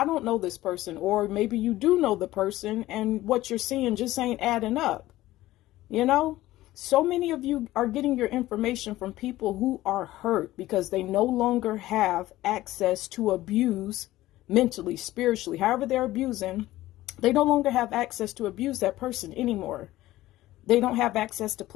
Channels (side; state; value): right; quieter; 16.1 dB